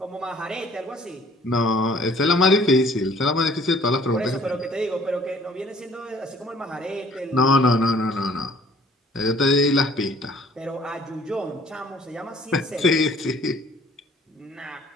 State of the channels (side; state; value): both; normal; correlation 0.56